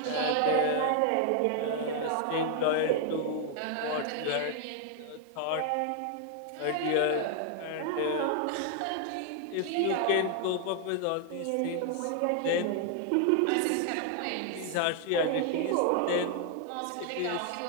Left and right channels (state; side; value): different; both; correlation 0.00